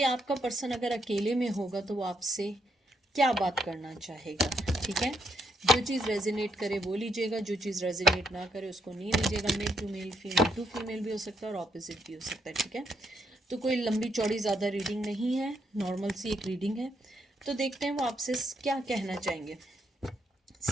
आपका पर्सन अगर अकेले में होगा तो वो आपसे क्या बात करना चाहेगा। ठीक है, जो चीज़ रेजोनेट करे वो लीजिएगा, जो चीज़ रेजोनेट ना करे उसको नहीं लीजिएगा। Male to male, female to female भी हो सकता है और ऑपोजिट भी हो सकता है। ठीक है, तो कोई लंबी चौड़ी ज़्यादा रीडिंग नहीं है, नॉर्मल सी एक रीडिंग है। तो देखते हैं वो आपसे क्या कहना चाहेंगे।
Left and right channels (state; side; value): normal; both; correlation 0.77